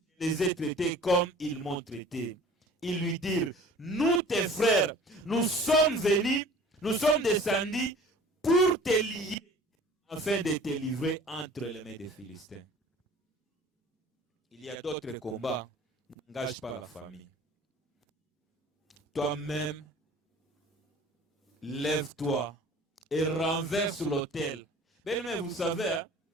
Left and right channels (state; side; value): normal; both; correlation 0.47